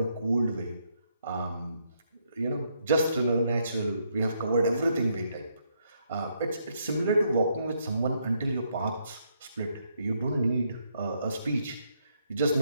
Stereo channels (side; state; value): both; inverted; correlation -0.75